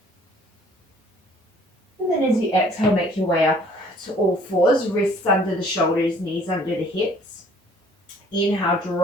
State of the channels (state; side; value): normal; both; correlation 0.56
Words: And then as you exhale, make your way up to all fours, wrists under the shoulders, knees under the hips. Inhale,